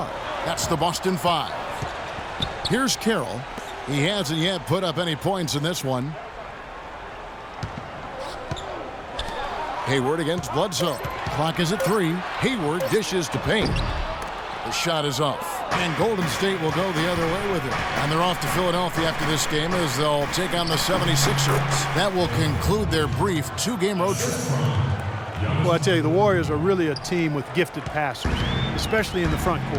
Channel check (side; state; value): both; identical; correlation 1.00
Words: That's the Boston 5. Here's Carroll. He hasn't yet put up any points in this one. Hayward against Bledsoe. Clock is at 3. Hayward dishes to Payne. The shot is off. And Golden State will go the other way with it. And they're off to Philadelphia after this game as they'll take on the 76ers. That will conclude their brief 2-game road trip. Well, I tell you, the Warriors are really a team with gifted passers, especially in the front